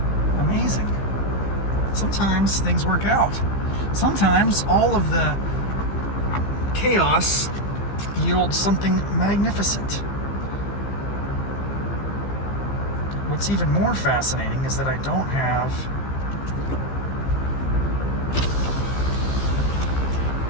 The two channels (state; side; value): late; right; 15 ms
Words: Amazing. Sometimes things work out. Sometimes all of the chaos yields something magnificent. What's even more fascinating is that I don't have...